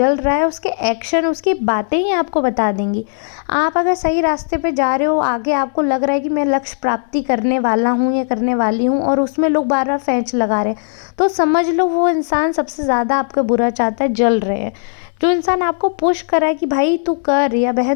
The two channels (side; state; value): right; silent; digital silence